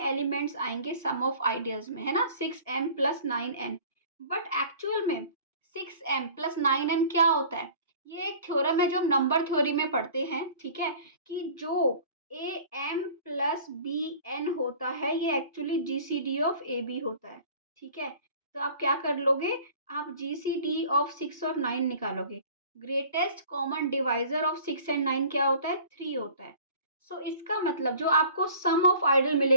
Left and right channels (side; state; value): both; inverted; correlation -0.46